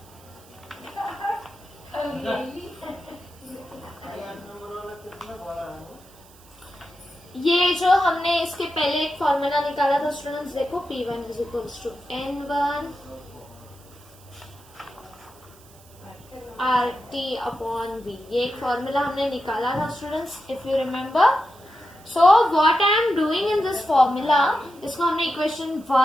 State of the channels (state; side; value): noise; right; hiss, 25 dB below the sound